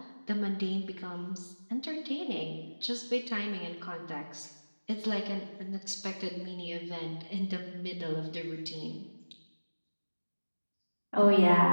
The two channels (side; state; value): both; inverted; correlation -1.00